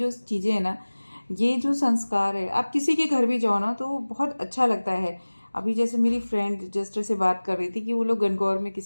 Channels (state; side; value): inverted; both; correlation -1.00